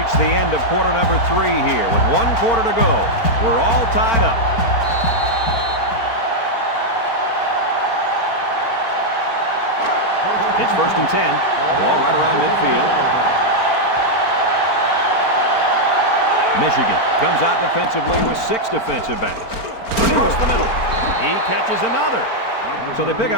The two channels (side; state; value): right; late; 4.4 ms